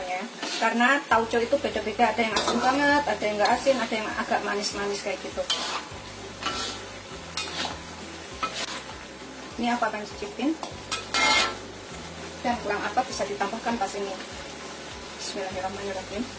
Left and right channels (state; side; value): identical; both; correlation 1.00